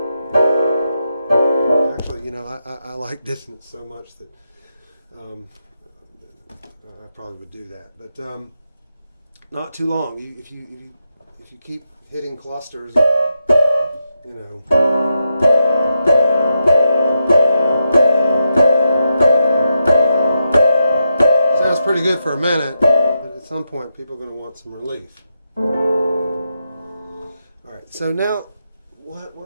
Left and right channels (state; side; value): inverted; both; correlation -0.85